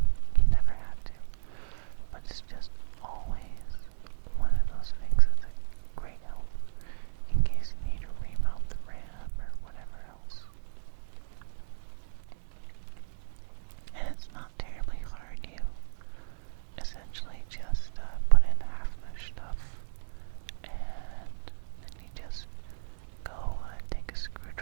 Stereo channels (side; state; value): left; silent; digital silence